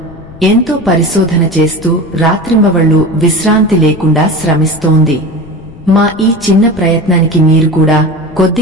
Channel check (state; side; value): noise; left; rumble, 20 dB below the sound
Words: ఎంతో పరిశోధన చేస్తూ రాత్రింబవళ్లు విశ్రాంతి లేకుండా శ్రమిస్తోంది. మా ఈ చిన్న ప్రయత్నానికి మీరు కూడా